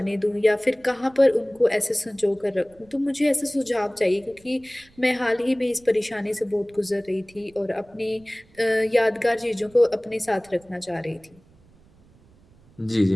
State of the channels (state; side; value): noise; right; rumble, 29 dB below the sound